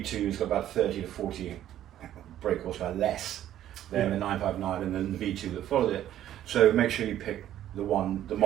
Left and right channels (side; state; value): left; quieter; 11.9 dB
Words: has got about 30 to 40 brake horsepower less than the 959 and then the V2 that followed it. So make sure you pick the